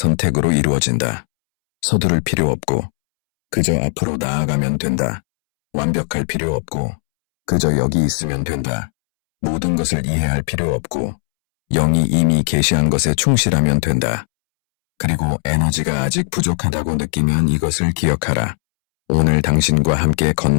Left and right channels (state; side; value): silent; right; 68 dB below the other